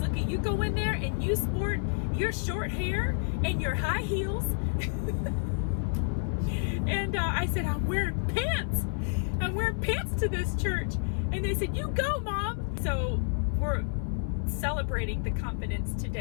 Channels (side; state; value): right; silent; 58 dB below the other